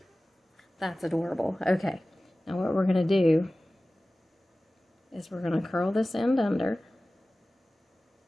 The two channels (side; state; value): both; normal; correlation 0.97